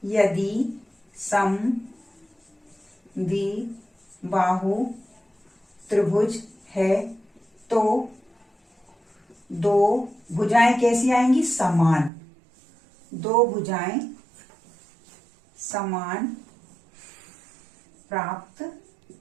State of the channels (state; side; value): drops out; left; at 12.1 s